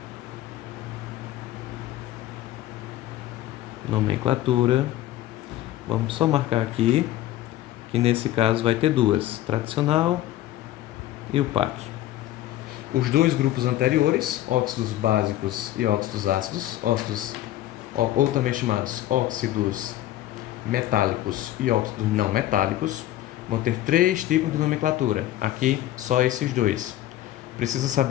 Nomenclatura. Vamos só marcar aqui que nesse caso vai ter duas, tradicional e IUPAC. Os dois grupos anteriores, óxidos básicos e óxidos ácidos, ou também chamados óxidos metálicos e óxidos não metálicos, vão ter 3 tipos de nomenclatura. Aqui, só esses dois. Precisa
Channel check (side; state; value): right; quieter; 14.1 dB